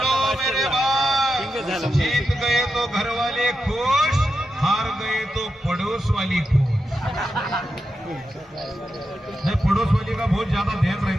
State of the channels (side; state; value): both; normal; correlation 0.88